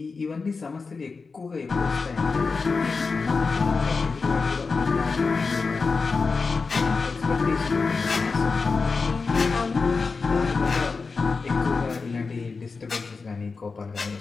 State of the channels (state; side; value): quieter; right; 4.5 dB